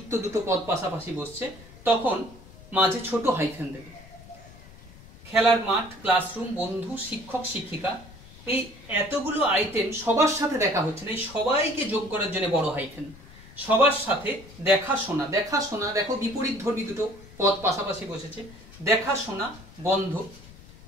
দুটো পদ পাশাপাশি বসছে, তখন মাঝে ছোট হাইফেন দেবে। খেলার মাঠ, ক্লাসরুম, বন্ধু, শিক্ষক শিক্ষিকা, এই এতগুলো আইটেম সবার সাথে দেখা হচ্ছে না, এই সবাইকে যোগ করার জন্য বড় হাইফেন। সবার সাথে দেখাশোনা, দেখাশোনা দেখো বিপরীত ধর্মী দুটো পদ পাশাপাশি বসেছে, দেখাশোনা বন্ধ,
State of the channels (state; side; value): noise; left; rumble, 20 dB below the sound